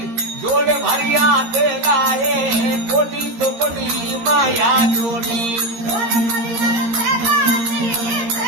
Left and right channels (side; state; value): left; late; 13 ms